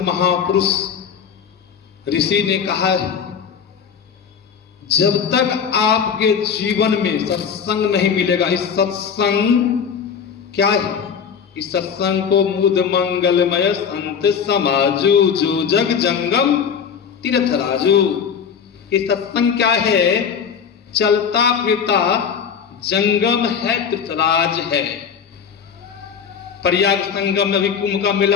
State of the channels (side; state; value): right; quieter; 7.0 dB